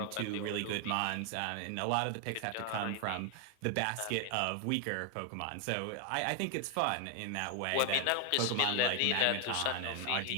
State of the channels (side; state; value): both; different; correlation 0.00